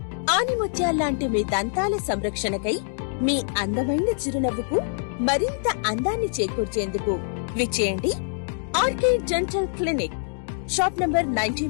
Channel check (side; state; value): right; silent; digital silence